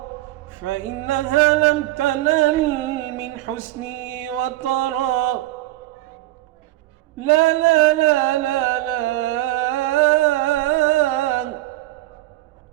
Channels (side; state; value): left; quieter; 17.0 dB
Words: فإنها لم تنل من حسنه وطرا. لا لا لا لا